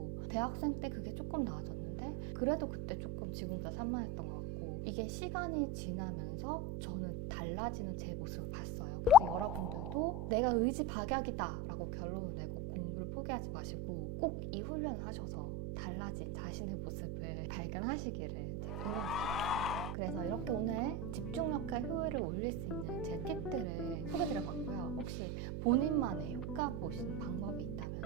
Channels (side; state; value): right; noise; hum, 3 dB below the sound